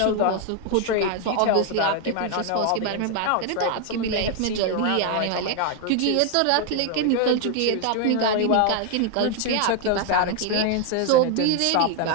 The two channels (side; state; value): both; different; correlation 0.01